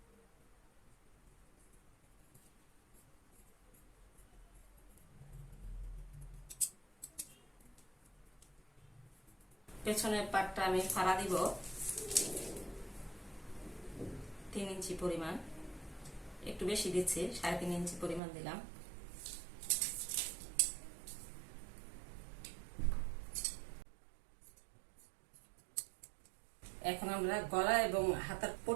পেছনের পাটটা আমি ফাড়া দিব 3 ইঞ্চি পরিমাণ, একটু বেশি দিচ্ছি, 3.5 ইঞ্চি পরিমাণ দিলাম। এখন আমরা গলা এবং হাতার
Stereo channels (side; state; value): left; drops out; at 18.2 s